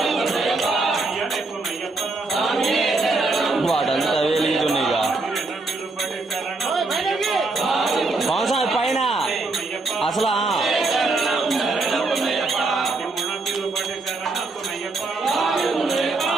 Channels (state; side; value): quieter; left; 3.5 dB